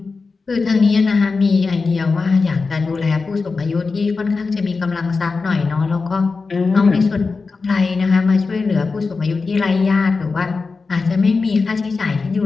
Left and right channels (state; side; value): quieter; right; 4.3 dB